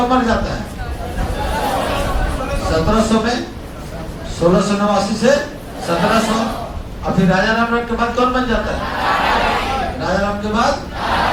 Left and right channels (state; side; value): identical; both; correlation 1.00